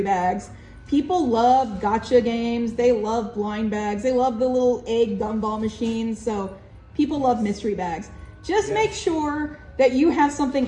bags. People love gotcha games. They love blind bags. They love the little egg gumball machines. So people love mystery bags. Just make sure that you have something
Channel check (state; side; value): identical; both; correlation 1.00